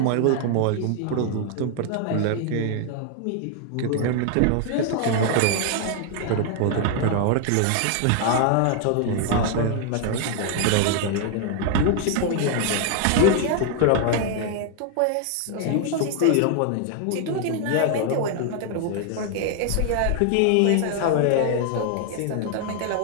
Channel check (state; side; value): different; both; correlation 0.00